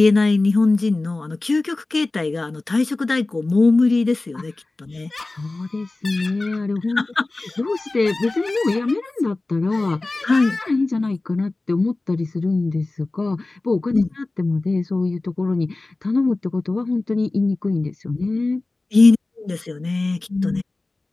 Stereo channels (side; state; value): right; quieter; 3.1 dB